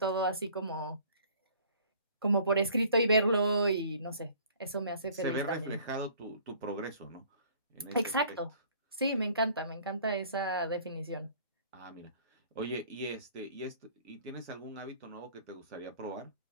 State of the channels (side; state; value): both; inverted; correlation -0.53